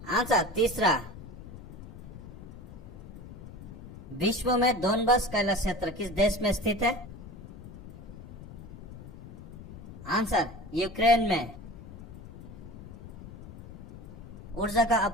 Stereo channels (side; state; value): left; noise; rumble, 15 dB below the sound